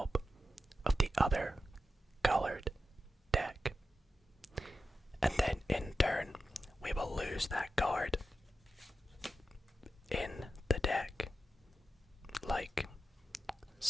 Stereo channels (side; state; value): both; normal; correlation 0.90